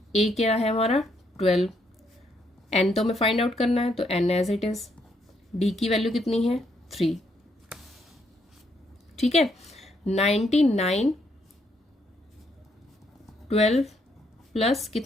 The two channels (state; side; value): normal; both; correlation 0.74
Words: ए क्या है हमारा? 12। एन तो हमें फाइंड आउट करना है, तो n as it is. D की वैल्यू कितनी है? 3। ठीक है, 99 12 प्लस